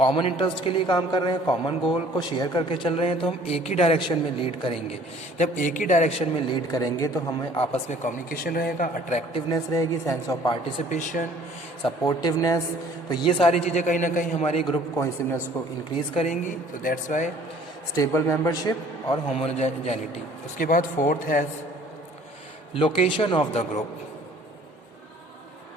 interest के लिए काम कर रहे हैं, common goal को share करके चल रहे हैं, तो हम एक ही डायरेक्शन में लीड करेंगे। जब एक ही डायरेक्शन में लीड करेंगे तो हमें आपस में कम्युनिकेशन रहेगा, अट्रैक्टिवनेस रहेगी, सेंस ऑफ पार्टिसिपेशन, सपोर्टिवनेस। तो ये सारी चीज़ें कहीं ना कहीं हमारी ग्रुप कोहेसिवनेस को इंक्रीज करेंगी। तो दैट्स वाई स्टेबल मेंबरशिप और होमोजेनिटी। उसके बाद फोर्थ है location of the group.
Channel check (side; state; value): both; normal; correlation 0.54